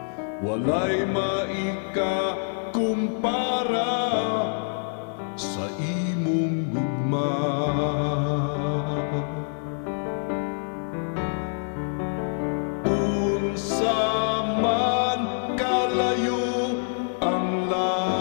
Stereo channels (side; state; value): right; silent; digital silence